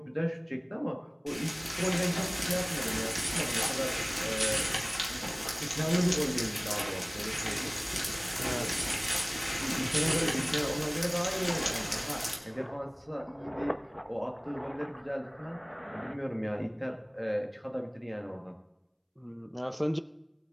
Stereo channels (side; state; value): both; identical; correlation 1.00